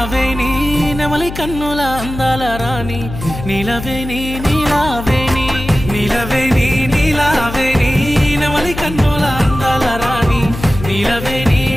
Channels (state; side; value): noise; left; hum, 10 dB below the sound